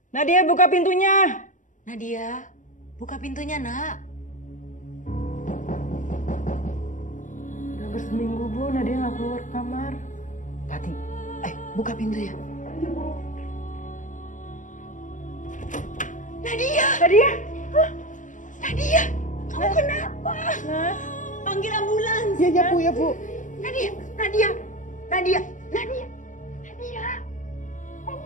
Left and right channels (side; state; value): right; late; 0.37 ms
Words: Nadia, buka pintunya. Nadia, buka pintunya, Nak. Udah hampir seminggu, Bu. Nadia nggak keluar kamar. Tati, buka pintunya. Nadia! Nadia! Hah? Nadia! Kamu kenapa? Panggil ambulans. Iya, Bu, ya, Bu. Nadia! Nadia! Nadia! Nadia! Nadia!